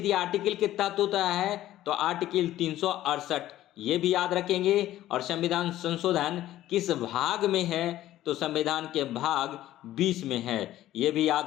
या आर्टिकल के तहत होता है? तो आर्टिकल 368, ये भी याद रखेंगे। और संविधान संशोधन किस भाग में है? तो संविधान के भाग 20 में है, ये भी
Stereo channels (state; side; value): quieter; right; 14.0 dB